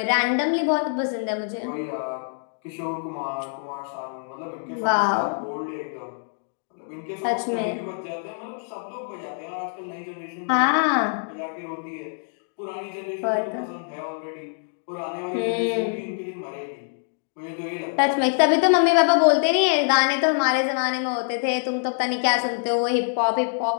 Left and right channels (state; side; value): silent; right; digital silence